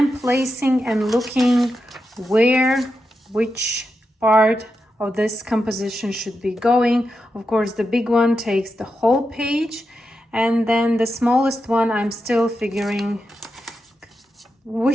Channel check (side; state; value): both; normal; correlation 0.88